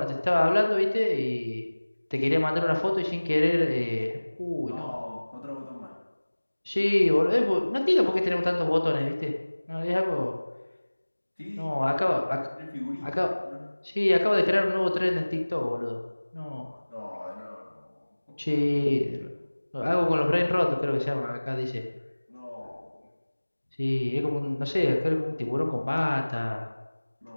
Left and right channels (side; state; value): both; inverted; correlation -1.00